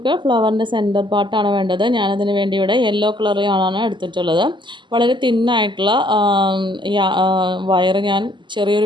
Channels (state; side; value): late; left; 0.23 ms